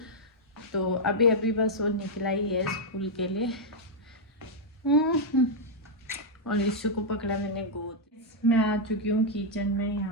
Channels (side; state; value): both; normal; correlation -0.05